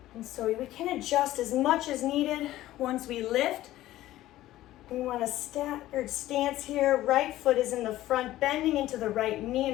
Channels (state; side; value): quieter; right; 15.0 dB